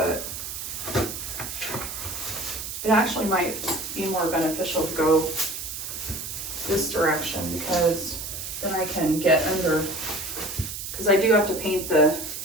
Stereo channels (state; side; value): noise; right; hiss, 7 dB below the sound